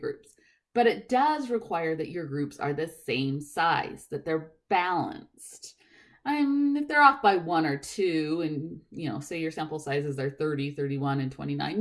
But it does require that your groups are the same size, that they're balanced. If they're off by 1 or 2, and say your sample sizes are 30, 31, and 29,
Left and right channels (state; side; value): identical; both; correlation 1.00